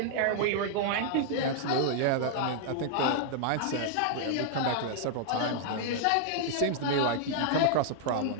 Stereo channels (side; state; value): both; different; correlation -0.01